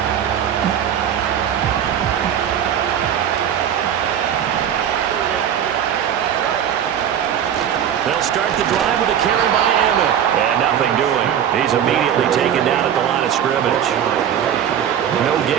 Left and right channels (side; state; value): left; quieter; 9.4 dB